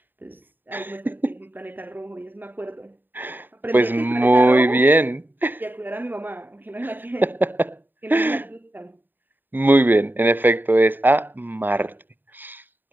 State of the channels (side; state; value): left; late; 0.092 ms